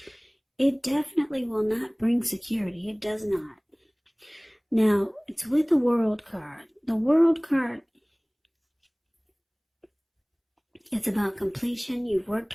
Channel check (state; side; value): identical; both; correlation 1.00